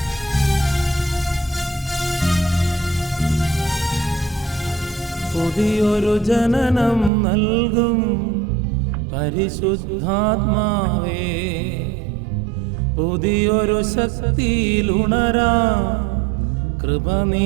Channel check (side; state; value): left; drops out; at 7.1 s